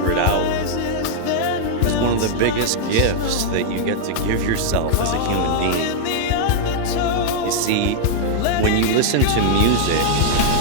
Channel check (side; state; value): both; different; correlation -0.01